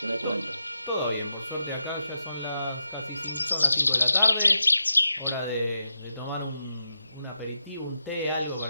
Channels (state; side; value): inverted; both; correlation -0.86